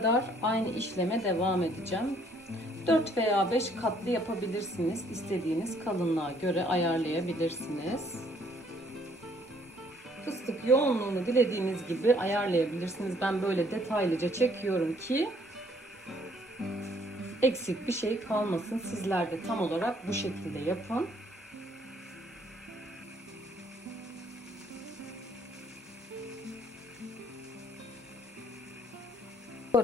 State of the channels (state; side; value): normal; both; correlation 0.64